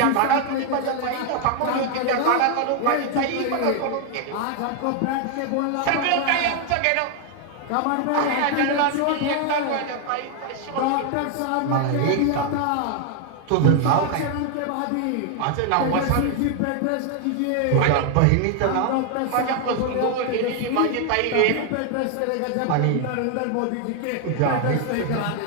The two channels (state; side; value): different; both; correlation 0.00